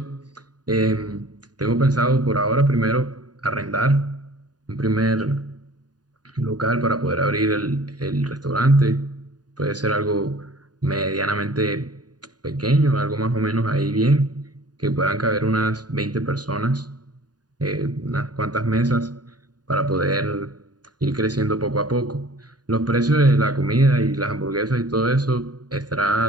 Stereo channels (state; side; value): late; left; 0.69 ms